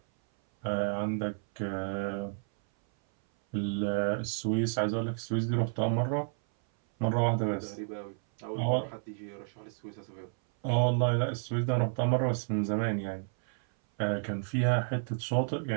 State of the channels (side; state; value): left; silent; 57 dB below the other